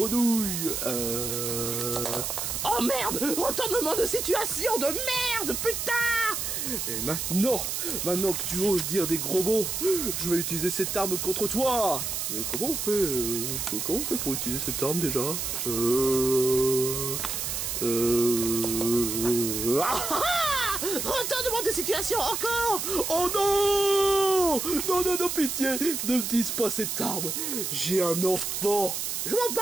Oh merde, retournement de situation de merde, putain. Et maintenant que tu oses dire des gros mots, je vais utiliser cette arme contre toi. Mais comment on fait pour utiliser cette arme déjà? Retournement de situation encore. Oh non! Non, non, non, pitié! Ne me dise pas cette arme! J'ai un enfant! Je m'en bats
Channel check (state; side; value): noise; right; hiss, 2 dB below the sound